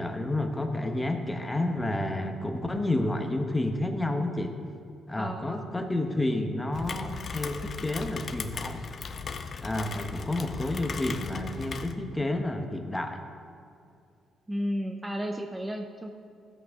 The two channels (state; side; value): normal; both; correlation 0.89